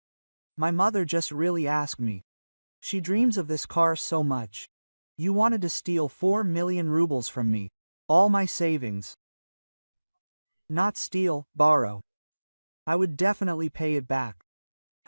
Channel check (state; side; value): inverted; both; correlation -1.00